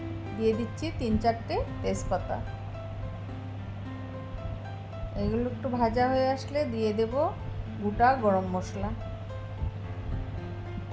দিয়ে দিচ্ছি 3-4টে তেজপাতা। এগুলো একটু ভাজা হয়ে আসলে দিয়ে দেব গোটা গরম মশলা।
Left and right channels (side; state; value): both; identical; correlation 1.00